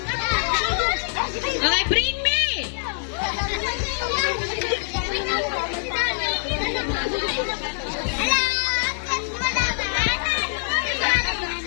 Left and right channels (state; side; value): silent; right; 63 dB below the other